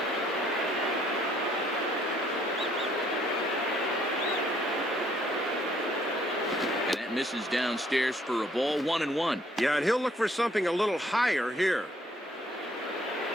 And that misses downstairs for a ball, 1-1. Yeah, and he'll look for something a little higher here.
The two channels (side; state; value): both; normal; correlation 0.64